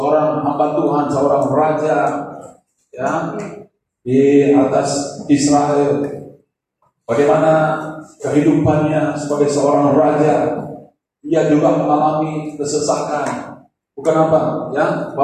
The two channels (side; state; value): both; identical; correlation 1.00